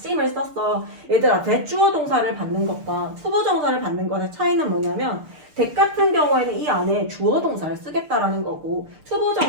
썼어. 얘들아 대주어 동사를 받는 것과 투부정사를 받는 것의 차이는 뭐냐면 대 같은 경우에는 이 안에 주어 동사를 쓰겠다라는 거고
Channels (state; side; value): late; left; 6.8 ms